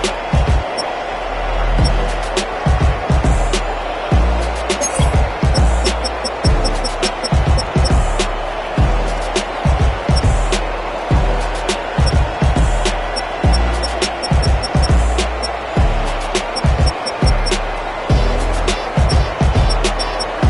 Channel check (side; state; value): both; identical; correlation 1.00